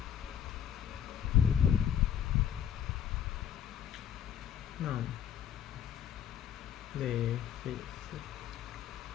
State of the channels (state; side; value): quieter; right; 9.2 dB